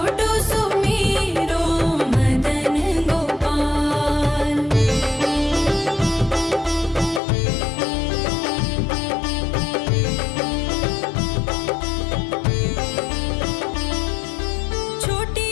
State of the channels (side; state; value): right; drops out; at 7.2 s